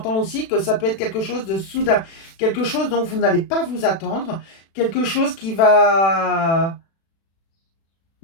aussi que ça peut être quelque chose de soudain. Quelque chose dont vous n'allez pas vous attendre. Quelque chose qui va...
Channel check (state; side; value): late; right; 36 ms